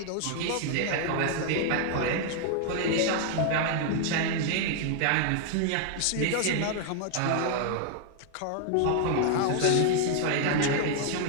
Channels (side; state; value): both; different; correlation 0.00